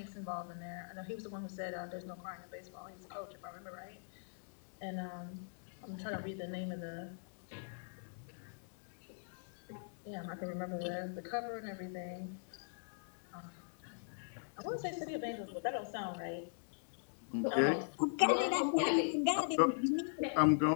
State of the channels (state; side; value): silent; right; digital silence